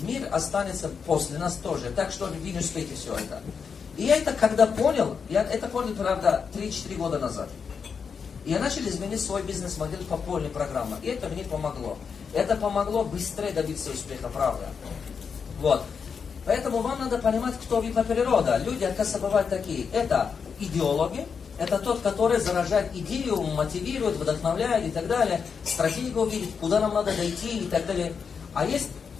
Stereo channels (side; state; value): right; quieter; 6.1 dB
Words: Мир останется после нас тоже. Так что вы не успеете все это. И я это когда понял, правда, 3-4 года назад. И я начал изменить свой бизнес-модель по полной программе. И это мне помогло. Это помогло быстрее добиться успеха, правда. Вот. Поэтому вам надо понимать, кто вы по природе. Люди, оказывается, бывают такие. Это идеологи, Это тот, который заражает идею, мотивирует, вдохновляет и так далее, стратегию видит, куда нам надо дойти и так далее. А есть